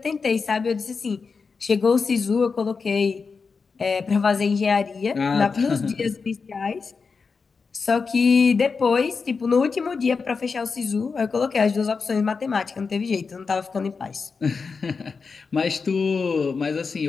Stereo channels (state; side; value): quieter; right; 5.0 dB